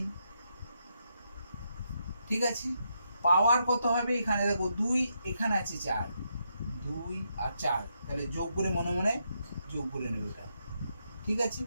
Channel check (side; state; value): both; inverted; correlation -0.80